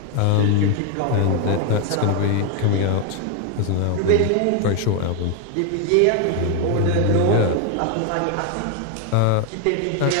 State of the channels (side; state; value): both; different; correlation 0.01